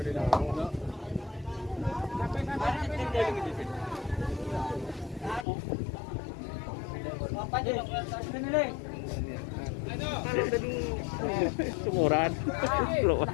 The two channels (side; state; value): right; drops out; at 5.5 s